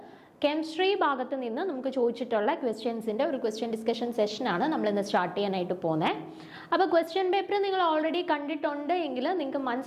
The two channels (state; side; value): identical; both; correlation 1.00